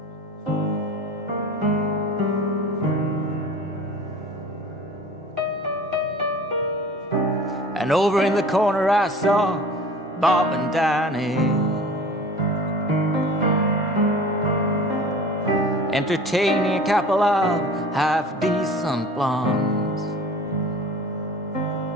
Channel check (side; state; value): both; normal; correlation 0.41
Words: And over in the corner I saw Bob and Danny entertaining a couple of half-decent blondes.